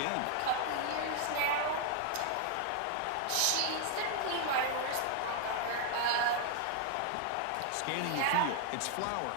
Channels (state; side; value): different; both; correlation 0.00